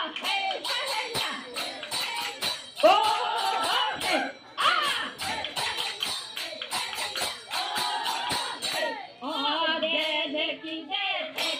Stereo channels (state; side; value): identical; both; correlation 1.00